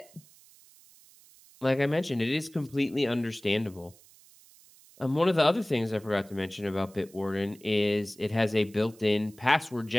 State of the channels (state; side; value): noise; right; hiss, 25 dB below the sound